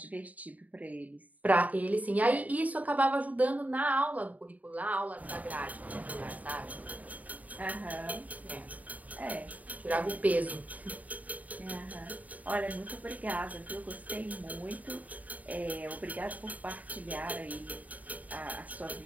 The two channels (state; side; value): late; left; 0.073 ms